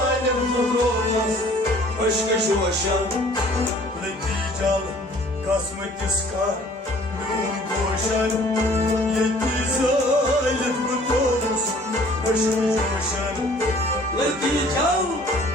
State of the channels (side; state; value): both; normal; correlation 0.54